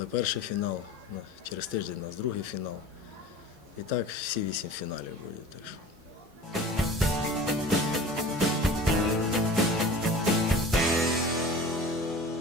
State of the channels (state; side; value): normal; both; correlation 0.39